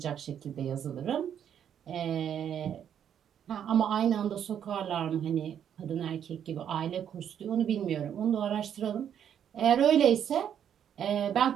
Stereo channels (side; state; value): left; quieter; 9.1 dB